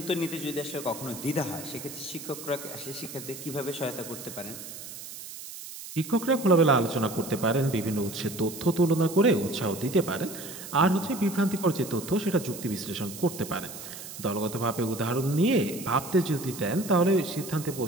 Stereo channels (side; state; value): right; noise; hiss, 12 dB below the sound